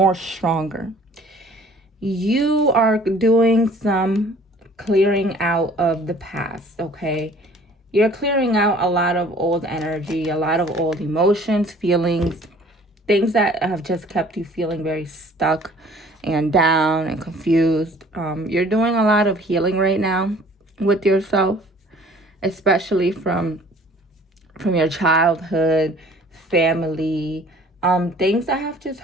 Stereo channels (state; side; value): normal; both; correlation 0.52